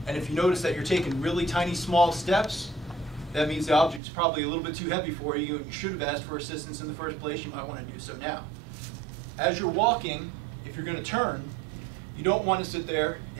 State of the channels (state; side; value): drops out; left; at 4.0 s